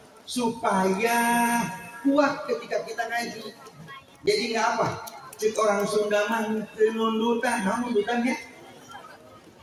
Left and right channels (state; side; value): identical; both; correlation 1.00